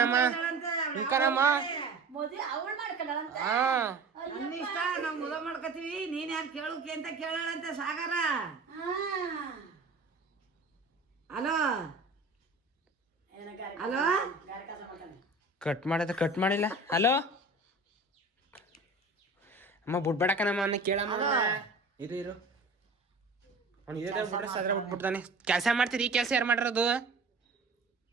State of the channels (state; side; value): quieter; left; 3.3 dB